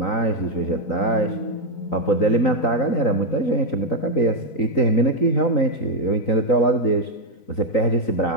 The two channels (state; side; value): late; right; 3.9 ms